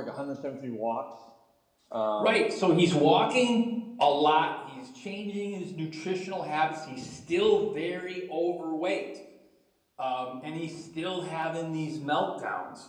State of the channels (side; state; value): both; identical; correlation 1.00